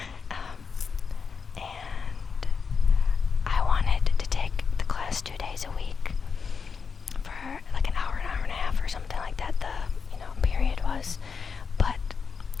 And I wanted to take the class 2 days a week for like an hour and a half or something like that, the period was, but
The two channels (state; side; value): quieter; right; 5.6 dB